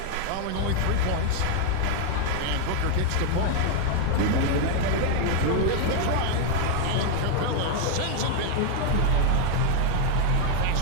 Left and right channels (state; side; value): different; both; correlation 0.00